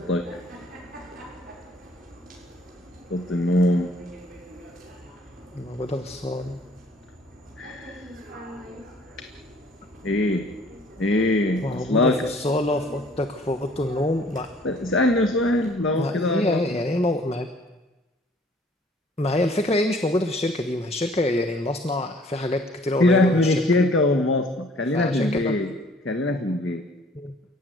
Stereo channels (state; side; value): normal; both; correlation 0.56